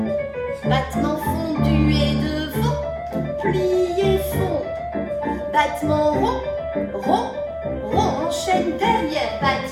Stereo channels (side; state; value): both; identical; correlation 1.00